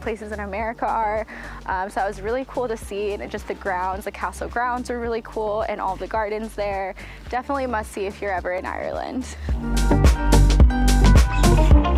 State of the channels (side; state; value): both; identical; correlation 1.00